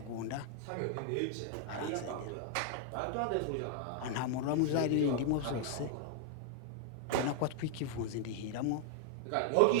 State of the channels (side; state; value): both; different; correlation 0.00